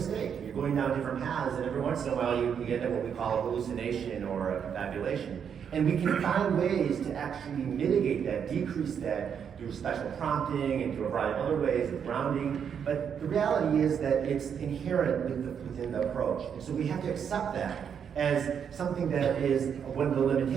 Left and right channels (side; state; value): left; quieter; 7.6 dB